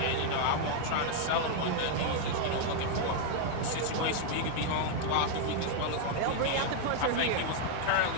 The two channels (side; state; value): both; different; correlation 0.00